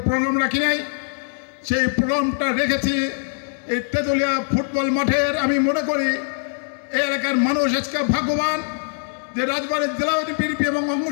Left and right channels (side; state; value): right; silent; digital silence